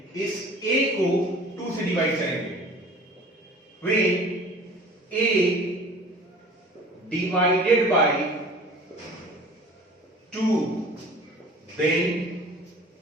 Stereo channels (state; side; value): normal; both; correlation 0.45